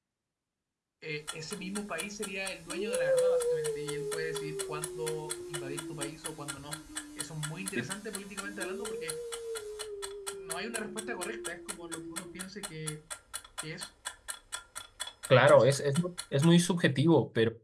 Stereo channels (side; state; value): both; identical; correlation 1.00